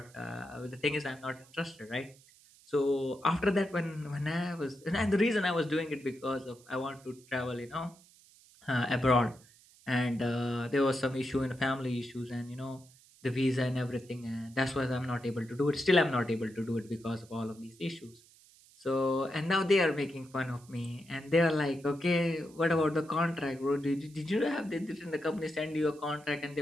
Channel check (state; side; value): noise; right; hiss, 26 dB below the sound